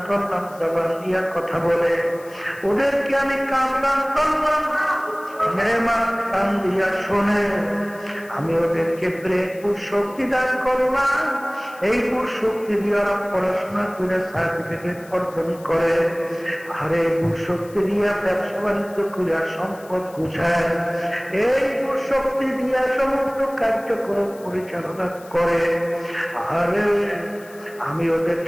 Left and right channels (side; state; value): left; noise; hiss, 23 dB below the sound